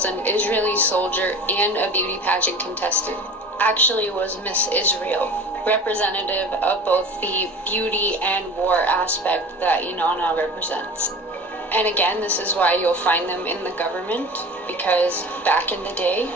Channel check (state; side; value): normal; both; correlation 0.38